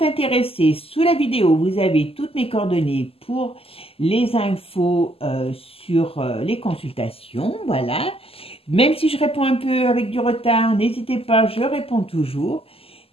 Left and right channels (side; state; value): right; late; 0.28 ms